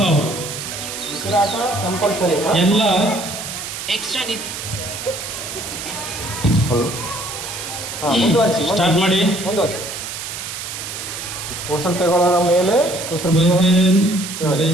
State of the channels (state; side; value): noise; right; hiss, 7 dB below the sound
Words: ಔಟ್. ಎಲ್ಲ ಎಕ್ಸ್ಟ್ರಾ ಸ್ಟಾರ್ಟ್ ಮಾಡಿ. ಉಸಿರು ತಗೊಳ್ಳೋರ ಮೇಲೆ ಬ್ರೀತ್ ಇನ್,